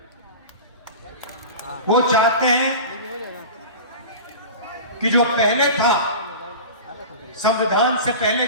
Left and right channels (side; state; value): both; inverted; correlation -0.32